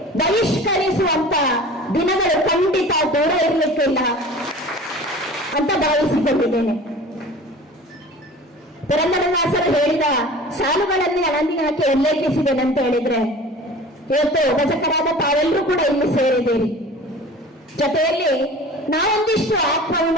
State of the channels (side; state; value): both; normal; correlation 0.41